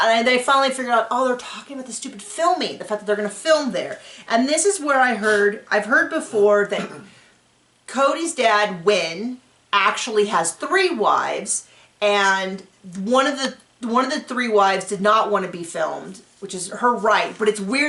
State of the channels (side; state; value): both; identical; correlation 1.00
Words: they finally figured out, oh, they're talking about the stupid filming, the fact that they're going to film there. And this is where I've heard before that Cody's dad, Wynn, actually has 3 wives, and one of the 3 wives did not want to be filmed, which is her right. But it's